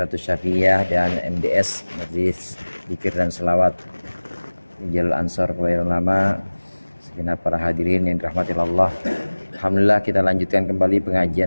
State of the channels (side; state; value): both; inverted; correlation -1.00